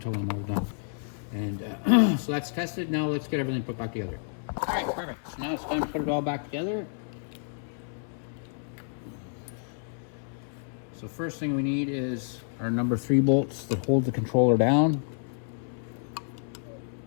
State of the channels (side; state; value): right; silent; 58 dB below the other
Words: I'm all done. And so that's tested. Now let's get everything put back together. All right, perfect. So now it's time to put it all back together. So first thing we need is our number 3 bolts that hold the controller down.